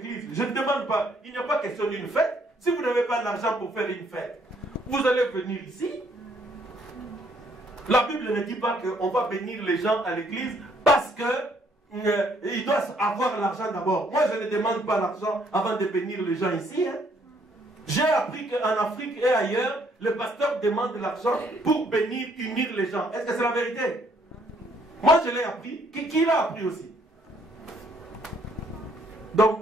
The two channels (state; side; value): normal; both; correlation 0.66